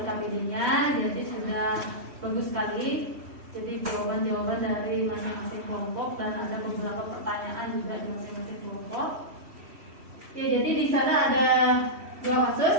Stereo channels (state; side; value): late; left; 3.1 ms